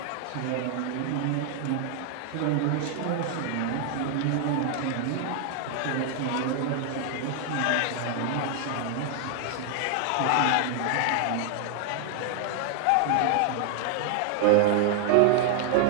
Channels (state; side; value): different; both; correlation 0.00